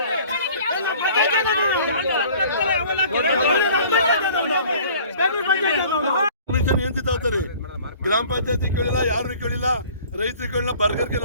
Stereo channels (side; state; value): both; inverted; correlation -0.50